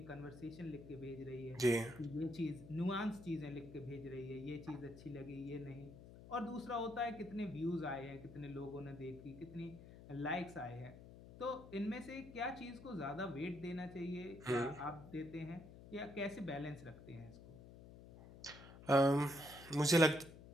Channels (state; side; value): noise; left; hum, 16 dB below the sound